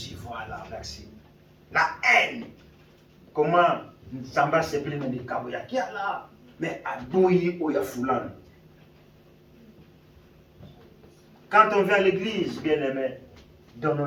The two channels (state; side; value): identical; both; correlation 1.00